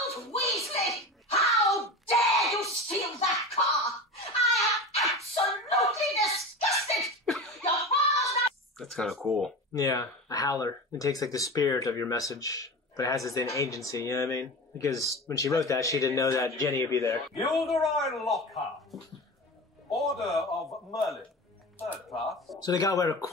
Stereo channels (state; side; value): normal; both; correlation 0.30